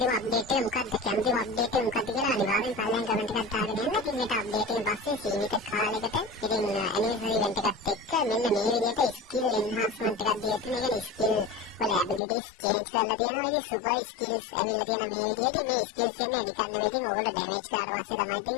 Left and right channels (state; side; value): drops out; right; at 12.2 s